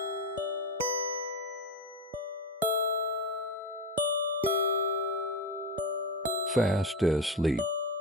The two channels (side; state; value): both; normal; correlation 0.18